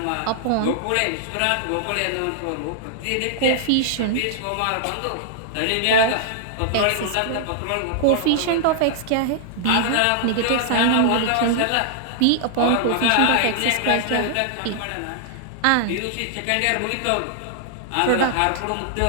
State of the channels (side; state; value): both; different; correlation -0.01